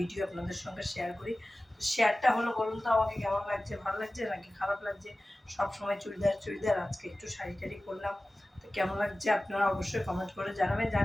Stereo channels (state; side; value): normal; both; correlation 0.97